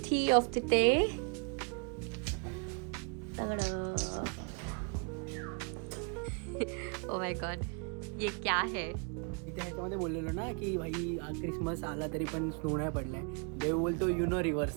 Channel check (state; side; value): quieter; left; 38.3 dB